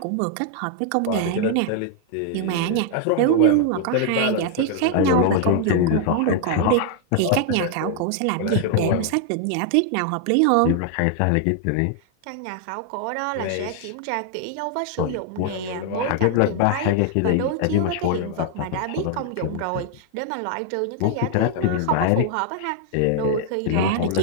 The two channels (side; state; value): both; different; correlation 0.00